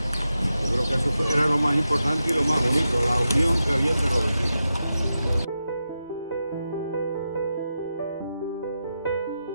Yo creo que eso era lo más importante y lo más bonito, la unión que había entre los vecinos.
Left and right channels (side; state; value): both; inverted; correlation -0.89